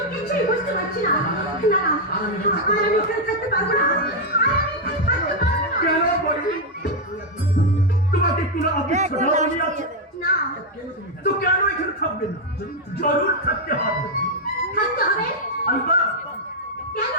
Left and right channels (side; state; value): both; normal; correlation 0.00